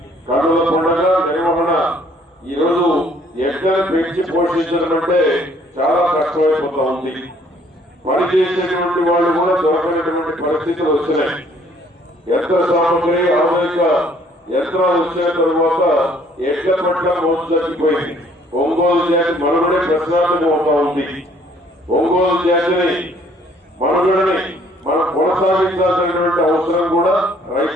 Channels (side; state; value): both; normal; correlation 0.61